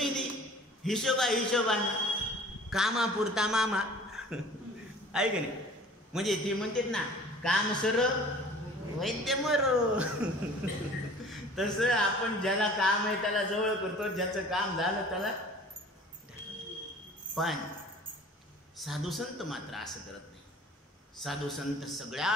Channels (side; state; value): both; normal; correlation 0.46